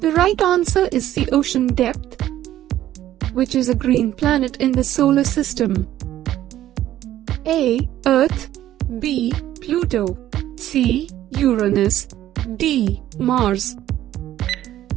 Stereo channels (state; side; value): quieter; left; 13.0 dB